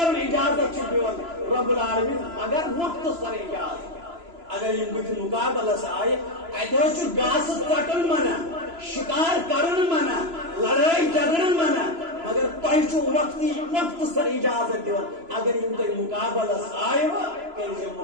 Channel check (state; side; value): late; left; 3.0 ms